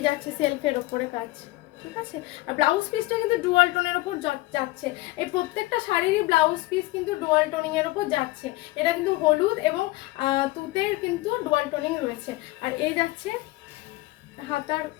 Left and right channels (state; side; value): quieter; right; 20.0 dB